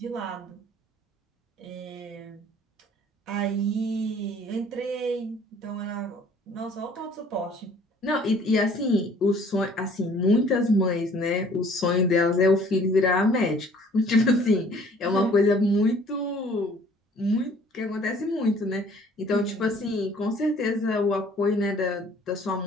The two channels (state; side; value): normal; both; correlation 0.55